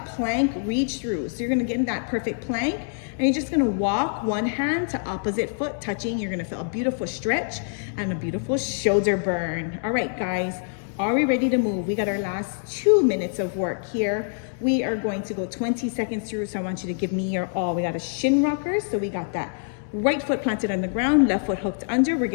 plank reach through. So you're gonna get in that perfect plank, and you're just gonna walk one hand to opposite foot touching. You're gonna feel a beautiful stretch and a beautiful shoulder burn. All right, guys. Are we ready to move? We got our last 2 minutes of work here. We are going to go 20 seconds through, so I want you to give me your all. We got a shin rocker, so we got that right foot planted on the ground, left foot hooked under. We're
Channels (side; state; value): right; silent; digital silence